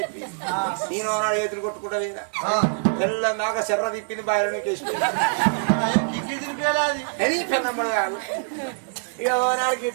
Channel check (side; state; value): left; silent; digital silence